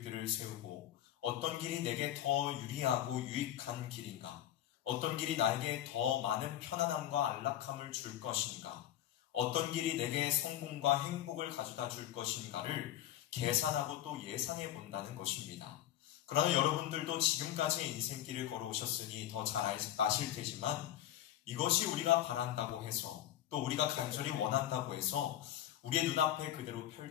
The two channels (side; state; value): right; quieter; 12.1 dB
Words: 세우고 어떤 길이 내게 더 유리하고 유익한 길인가? 어떤 길이 나에게 더 많은 편안함과 안락함을 줄 것인가? 어떤 길이 내게 성공과 행복을 가져다 줄 것인가를 계산하고 또 예상해 본다는 것입니다. 그러나 여러분들도 지금까지의 인생길을 걸어오셨으니 더 잘 아실 테지만 이것이 우리가 바란다고 해서 또 우리가 간절히 원한다고 해서 우리의 눈앞에 그대로